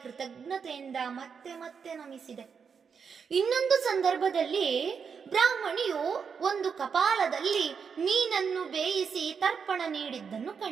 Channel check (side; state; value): left; quieter; 6.3 dB